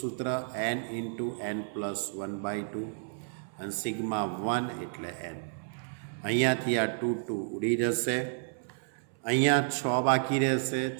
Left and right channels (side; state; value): left; silent; 57 dB below the other